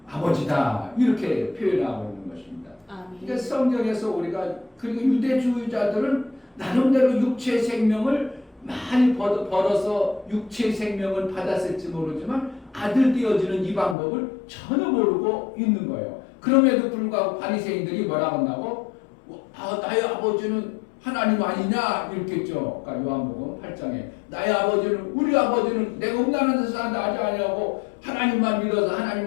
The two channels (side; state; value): right; drops out; at 14.0 s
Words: 아버지다 이렇게 표현하고 있는 것입니다. 아멘. 그러니까 성경에서 우리가 그리고 유대주의자들은 나름대로 육체의 생명을 많이 벌어서 육체의 생명을 받았을지 모르지만 아들 되어지는 이 방법을 전혀 모르고 있는 거예요. 그럼에도 불구하고 바리새인들이 뭐라고 한다고? 나의 아버지는 하나님 아니냐 이렇게 했죠. 그러니까 요한복음 8장에 나의 아버지는 우리 아버지는 내가 음란한 데서 나지 아니하고 하나님만 믿어서